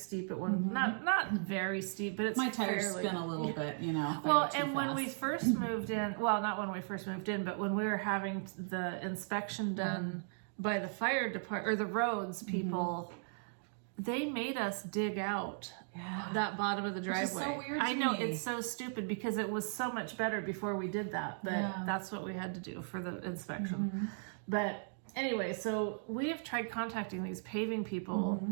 at one, not very steep, but it's my tires spin a little bit, Well, and when we first moved in, well, not when we first moved in, but when we were having the inspection done by the fire department or the roads people, they made us dig out that bottom of the driveway. Which is so weird to I know, me. it's so stupid because it was so much better before we did that, but that's what we had to do for the inspection. But anyway, so we have tried contacting these paving people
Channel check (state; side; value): silent; left; digital silence